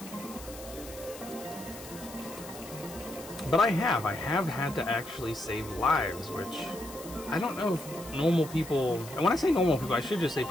But I have had to actually save lives, which I don't know if normal people, and when I say normal people, I should just say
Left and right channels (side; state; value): left; noise; hiss, 15 dB below the sound